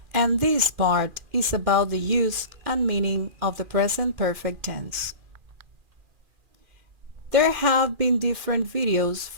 and this part is about the use and meaning of the present perfect tense. There have been different videos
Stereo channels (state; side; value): late; left; 2.4 ms